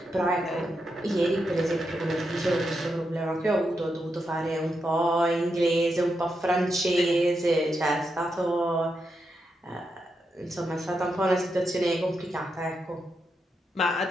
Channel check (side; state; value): both; normal; correlation 0.84